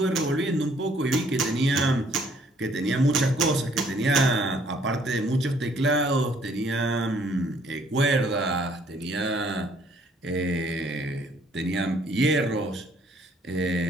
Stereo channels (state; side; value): normal; both; correlation 0.63